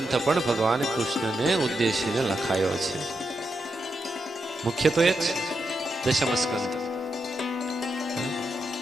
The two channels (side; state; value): both; normal; correlation 0.85